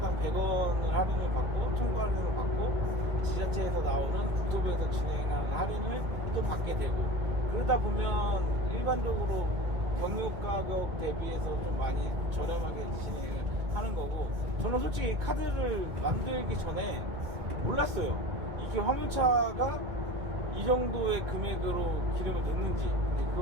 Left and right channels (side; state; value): left; late; 1.6 ms